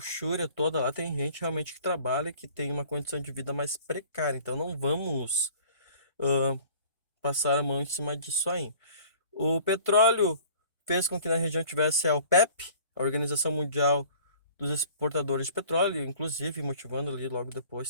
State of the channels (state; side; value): inverted; both; correlation -0.50